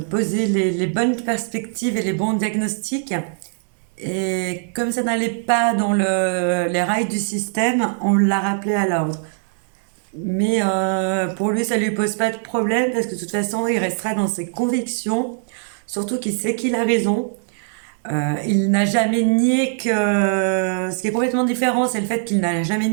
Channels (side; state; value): left; silent; 58 dB below the other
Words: posé les bonnes perspectives et les bons diagnostics. Et comme ça n'allait pas dans les rails du système, on l'a rappelé à l'ordre. Mais pour lui, ça lui pose pas de problème parce que de toute façon, il restera dans ses convictions. Surtout qu'il sait qu'il a raison. Il n'a jamais nié que... Ce qui est complètement différent, c'est le fait qu'il n'a jamais